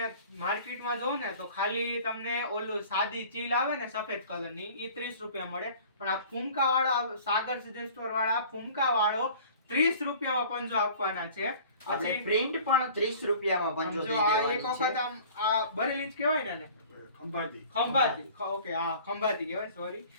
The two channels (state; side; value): inverted; both; correlation -0.47